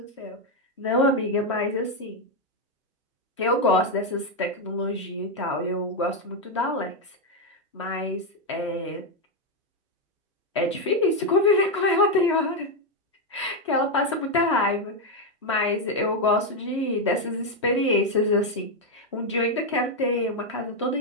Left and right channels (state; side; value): normal; both; correlation 0.04